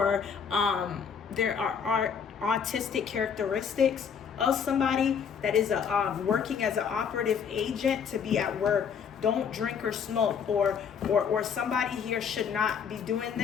there are autistic characteristics of somebody that is working as an operative agent to be at work. Don't drink or smoke, or somebody here should not be doing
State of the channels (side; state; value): right; quieter; 7.0 dB